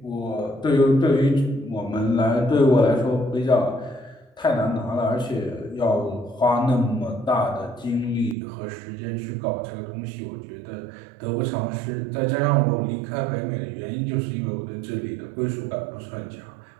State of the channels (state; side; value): drops out; left; at 8.3 s